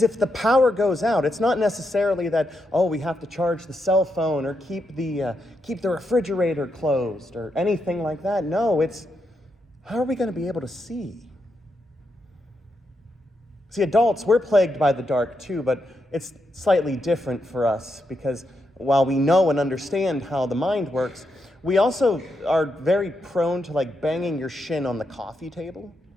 if the power goes out, it's not necessarily that, we have to charge the cell phone or keep the refrigerator closed or anything like that. No, it's, how are we going to be able to see? See, adults, we're plagued by the dark too, but it's slightly different for us, because while we know and understand how the mind works, we also are very prone to banging your shin on the coffee table.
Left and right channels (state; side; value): normal; both; correlation 0.83